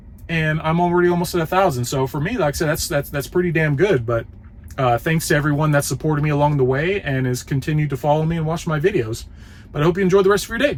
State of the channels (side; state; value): both; identical; correlation 1.00